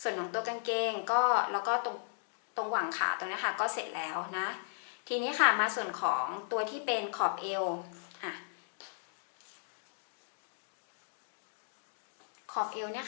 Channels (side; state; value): right; silent; digital silence